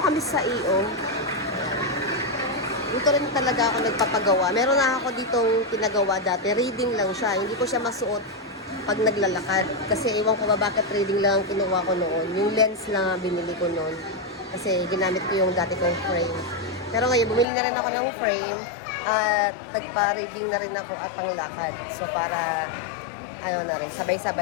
kami sa EO. Dito rin talaga ako nagpapagawa. Meron na ako ditong pinagawa dati. Reading lang siya. Hindi ko siya masuot pag naglalakad. Kasi ewan ko ba bakit reading lang ang kinuha ko noon. Yung lens lang ang binili ko noon. Kasi ginamit ko yung dati kong frame. Pero ngayon, bumili na rin ako ng frame. At nagpa-reading na rin ako at panglakad. So para, na rin,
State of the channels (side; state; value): right; drops out; at 17.4 s